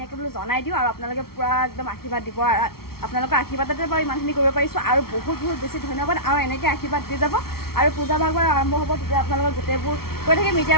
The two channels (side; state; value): right; late; 0.94 ms